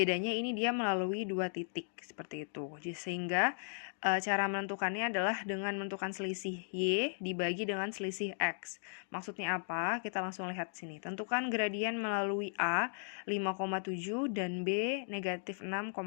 ini dia melalui dua titik seperti itu. Sehingga cara menentukannya adalah dengan menentukan selisih Y dibagi dengan selisih X. Maksudnya apa? Kita langsung lihat sini. Tentukan gradien melalui A 5,7 dan B negatif 6,10.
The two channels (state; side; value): silent; right; digital silence